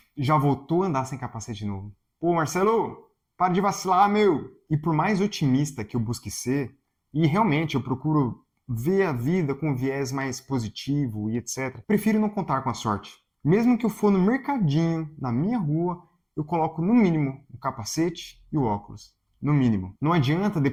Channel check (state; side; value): identical; both; correlation 1.00